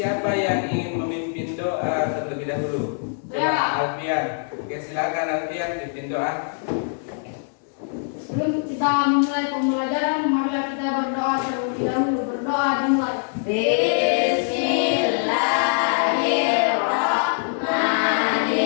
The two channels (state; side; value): silent; right; 63 dB below the other